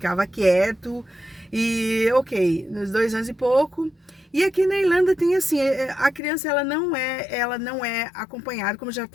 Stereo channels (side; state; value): right; drops out; at 6.2 s